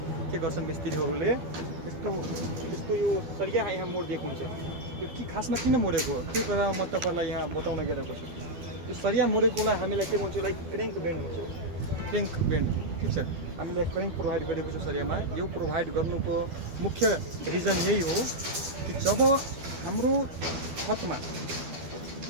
के गर्छन् मिस्त्रीहरूले, यस्तो यो सरिया यहाँ मोडिदिएको हुन्छ। यो के खासमा किन मोडेको हो त्यो कुरा म तपाईलाई यहाँ बताउन गइरहेको छु। यो सरिया मोडेकोलाई हामीलाई के भन्छौँ, लाइक क्रेङ्क बेन्ड हुन्छ। क्रेङ्क बेन्ड ठिक छ, हामीले क्रेङ्क प्रोभाइड गरेको छ सरियामा। यो प्रोभाइड गर्नुको मुख्य रिजन यही हो कि जब हाम्रो छतमा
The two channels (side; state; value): left; late; 12 ms